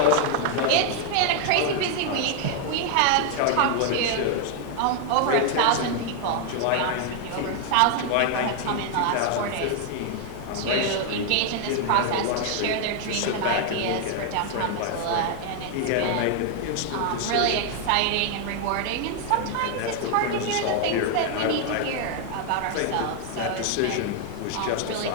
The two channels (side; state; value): both; different; correlation 0.00